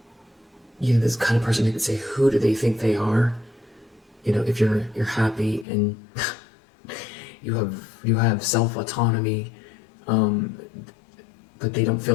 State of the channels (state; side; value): drops out; right; at 5.7 s